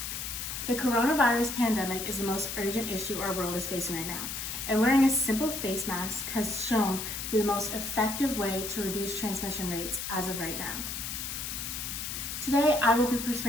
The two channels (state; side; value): noise; left; hiss, 5 dB below the sound